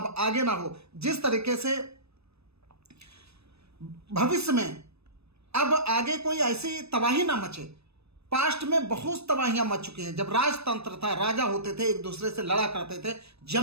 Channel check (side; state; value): left; late; 0.79 ms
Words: आगे ना हो, जिस तरीके से भविष्य में अब आगे कोई ऐसी तबाही ना मचे। पास्ट में बहुत तबाहियां मच चुकी हैं। जब राजतंत्र था, राजा होते थे, एक दूसरे से लड़ा करते थे,